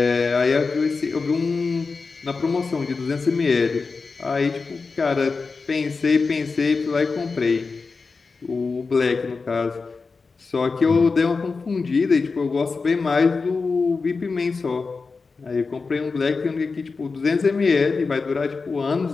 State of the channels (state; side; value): quieter; right; 4.4 dB